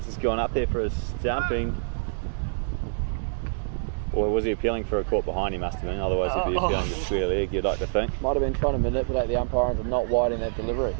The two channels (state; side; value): silent; left; digital silence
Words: has gone up there for a stumping. Or was he appealing for a caught behind? He must have been, otherwise he'd be appealing to square leg, you'd like to think. might have been trying to manipulate the umpire into not widening that delivery.